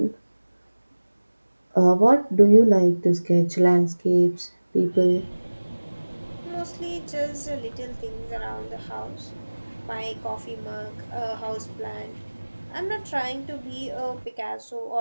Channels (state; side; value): inverted; both; correlation -1.00